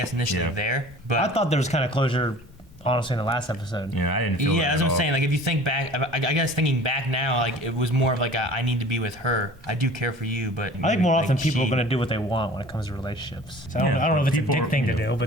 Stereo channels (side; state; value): both; normal; correlation 0.45